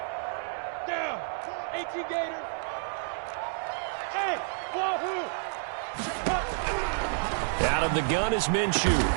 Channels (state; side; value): silent; left; digital silence